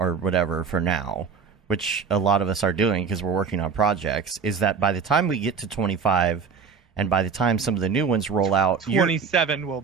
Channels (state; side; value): quieter; left; 5.7 dB